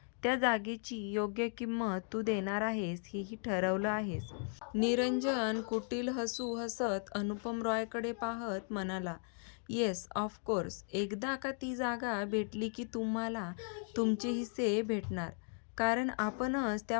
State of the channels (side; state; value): right; silent; 53 dB below the other